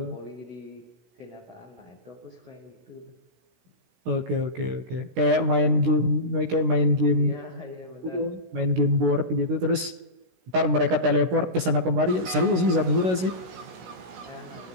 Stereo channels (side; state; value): left; late; 16 ms